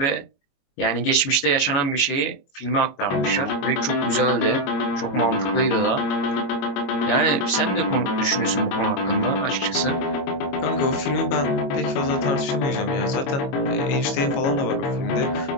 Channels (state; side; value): late; right; 22 ms